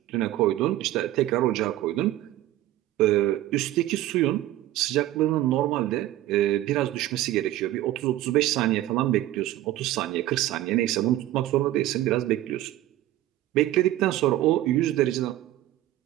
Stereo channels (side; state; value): left; quieter; 14.7 dB